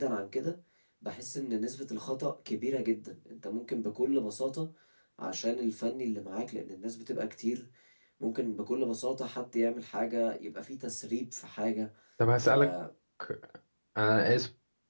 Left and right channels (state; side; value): inverted; both; correlation -1.00